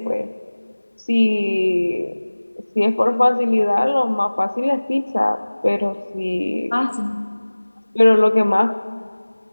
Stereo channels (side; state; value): both; inverted; correlation -1.00